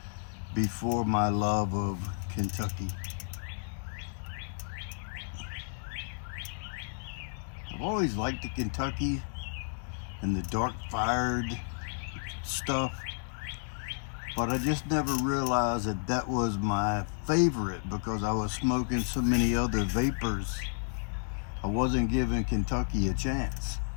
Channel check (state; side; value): silent; right; digital silence